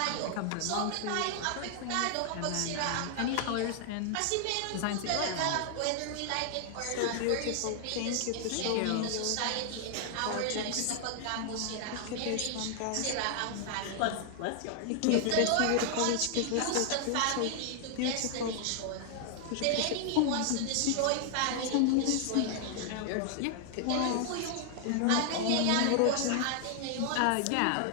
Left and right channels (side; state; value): both; different; correlation 0.00